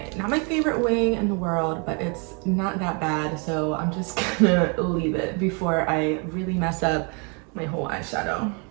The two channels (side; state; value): left; quieter; 34.6 dB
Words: not my favorite wing in the world, but it's not that bad, so I'm just gonna leave it before I really mess up my whole eyeshadow.